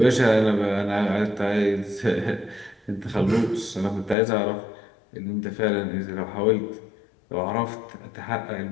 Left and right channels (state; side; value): drops out; right; at 4.2 s